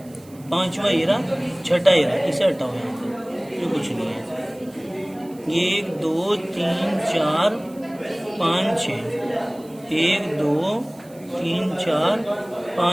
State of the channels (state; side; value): noise; right; hiss, 26 dB below the sound